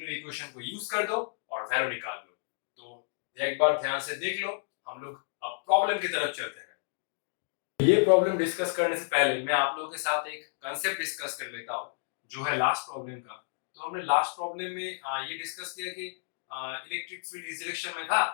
इक्वेशन को यूज कर दो और वैल्यू निकाल लो। तो एक बार ध्यान से देख लो। हम लोग अब प्रॉब्लम की तरफ चलते हैं। ये प्रॉब्लम डिस्कस करने से पहले मैं आप लोगों के साथ एक कांसेप्ट डिस्कस कर लेता हूँ जो है लास्ट प्रॉब्लम का। तो हमने लास्ट प्रॉब्लम में ये डिस्कस किया कि इलेक्ट्रिक फील्ड इस डायरेक्शन में था,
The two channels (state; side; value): silent; right; digital silence